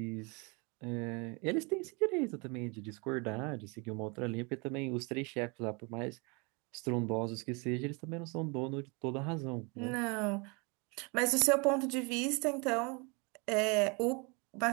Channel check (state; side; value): quieter; left; 30.8 dB